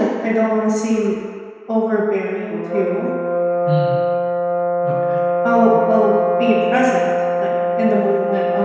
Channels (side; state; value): both; identical; correlation 1.00